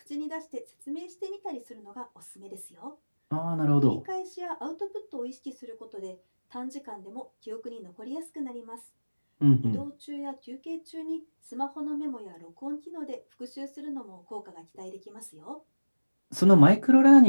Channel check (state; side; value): inverted; both; correlation -1.00